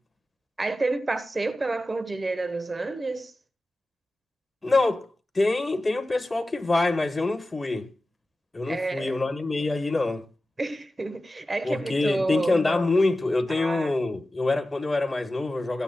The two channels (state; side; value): normal; both; correlation 0.94